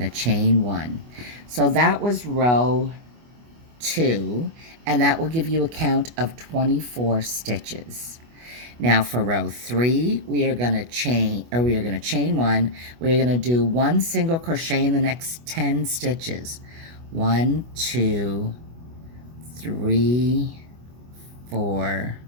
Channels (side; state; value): left; late; 25 ms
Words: to chain 1. So that was row 2, and that will give you a count of 24 stitches. Now for row 3, we are going to chain 1. We're going to do 1 single crochet in the next 10 stitches. 1, 2, 3, 4,